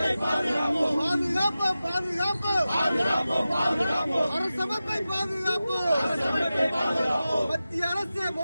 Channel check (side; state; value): both; inverted; correlation -0.94